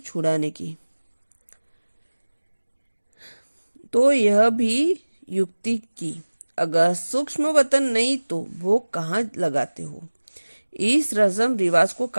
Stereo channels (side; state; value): both; inverted; correlation -1.00